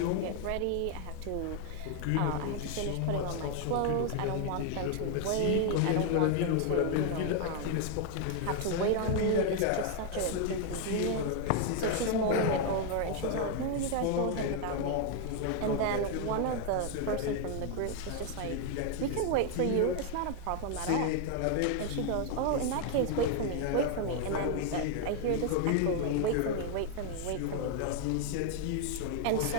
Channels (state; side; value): different; both; correlation 0.00